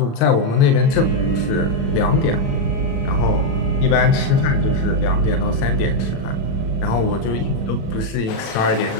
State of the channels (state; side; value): late; right; 36 ms